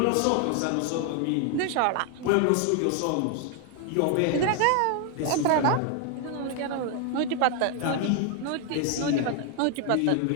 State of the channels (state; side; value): different; both; correlation 0.00